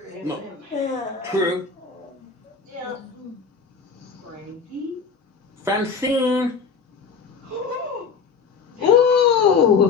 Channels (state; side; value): quieter; right; 5.5 dB